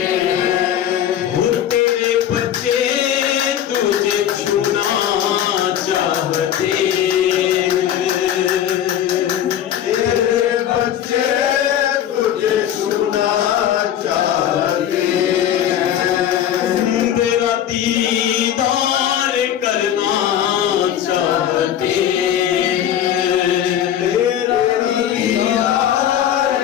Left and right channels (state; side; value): quieter; right; 10.5 dB